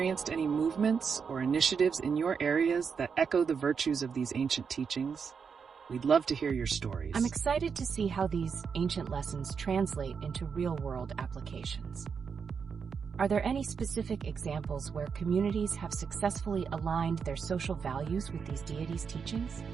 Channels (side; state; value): left; quieter; 6.1 dB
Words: any movements or initiatives in your areas that echo the virtues of these ancient teachings? We'd love to hear your stories. I'm excited to see how these ancient lessons translate into real-world applications. Are there any specific examples where communities have successfully aligned their social values with these deities' teachings?